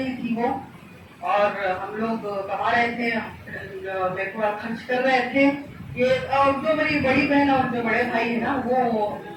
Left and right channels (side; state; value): both; identical; correlation 1.00